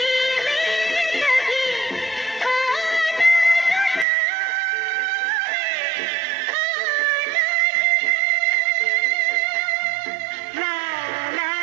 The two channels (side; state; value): left; drops out; at 4.0 s